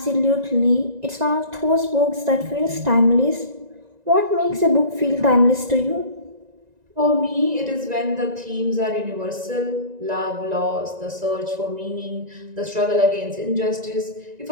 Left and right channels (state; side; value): late; left; 1.9 ms